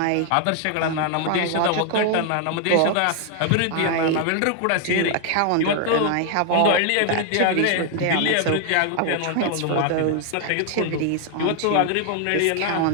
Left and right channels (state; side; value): different; both; correlation 0.00